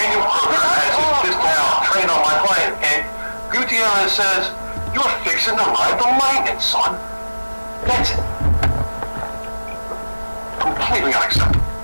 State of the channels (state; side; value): inverted; both; correlation -1.00